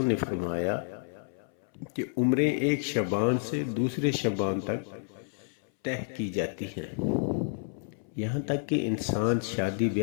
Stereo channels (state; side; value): silent; right; 58 dB below the other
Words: نے فرمایا کہ عمریں ایک شعبان سے دوسرے شعبان تک طے کی جاتی ہیں۔ یہاں تک کہ انسان شادی